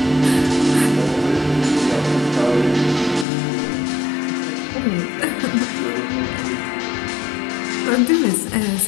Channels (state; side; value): drops out; right; at 3.2 s